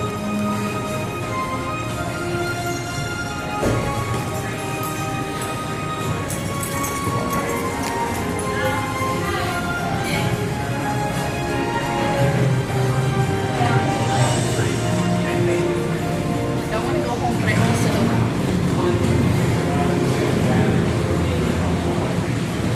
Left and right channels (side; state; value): both; identical; correlation 1.00